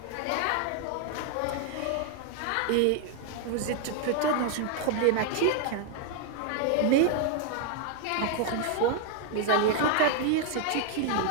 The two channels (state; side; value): different; both; correlation 0.00